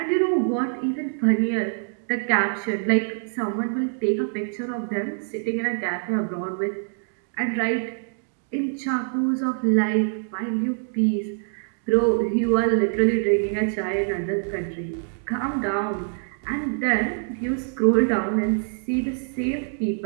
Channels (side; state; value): left; silent; digital silence